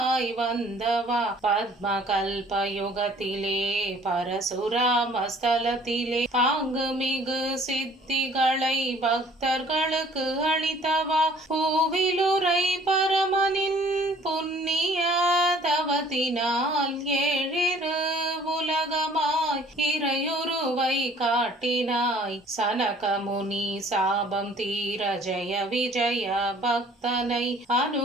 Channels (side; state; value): both; normal; correlation 0.55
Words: வந்தவா, பத்ம கல்பயுகத்திலே பரசுராமஸ்தலத்திலே பாங்கு மிகு சித்திகளை பக்தர்களுக்கு அளித்தவா, பூவிலுரை பரமனின் புண்ணிய தவத்தினால் ஏழிரு உலகமாய் இறையுருவை காட்டினாய், சனகமுனி சாபம் தீர ஜெய விஜய பக்தனை